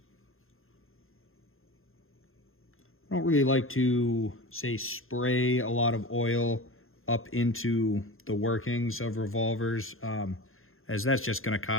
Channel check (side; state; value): right; late; 0.60 ms